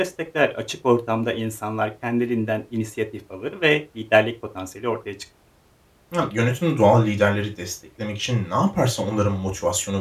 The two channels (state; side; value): identical; both; correlation 1.00